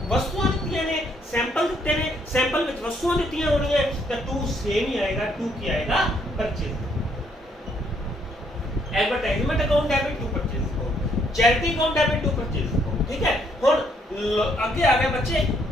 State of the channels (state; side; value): normal; both; correlation 0.70